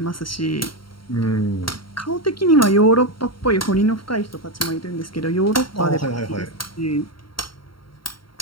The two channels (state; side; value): late; right; 0.73 ms